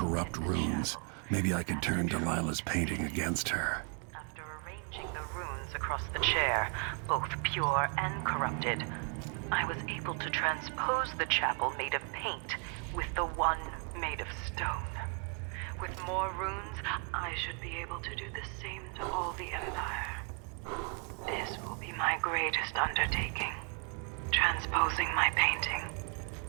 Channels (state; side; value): quieter; left; 38.6 dB